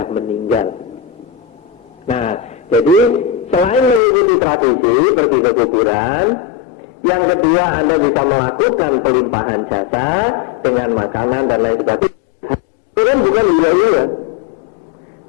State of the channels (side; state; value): right; drops out; at 4.0 s